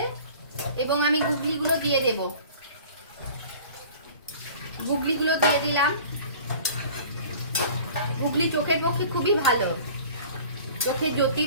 এবং আমি গুগলিগুলো দিয়ে দেব। গুগলিগুলো দিয়ে দিলাম। গুগলি চোখের পক্ষে খুবই ভালো, চোখের জ্যোতি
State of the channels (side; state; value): both; inverted; correlation -0.45